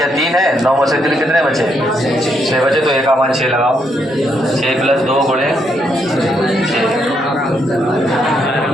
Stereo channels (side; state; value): both; normal; correlation 0.76